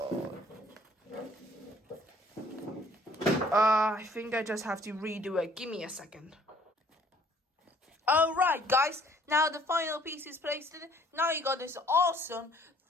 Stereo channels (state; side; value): normal; both; correlation 0.59